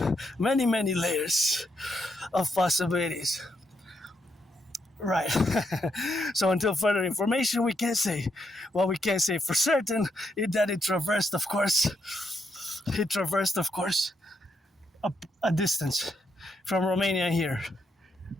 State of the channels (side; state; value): both; normal; correlation 0.79